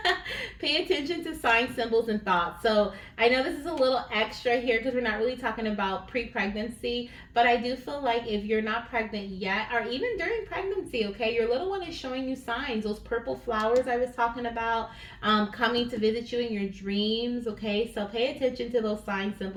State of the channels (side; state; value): both; identical; correlation 1.00